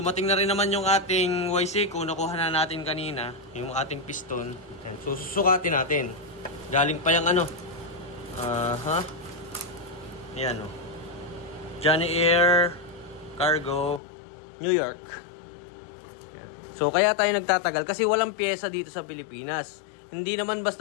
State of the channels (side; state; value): right; drops out; at 14.0 s